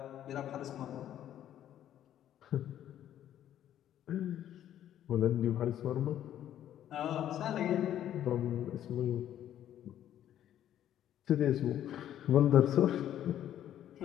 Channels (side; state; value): right; quieter; 11.3 dB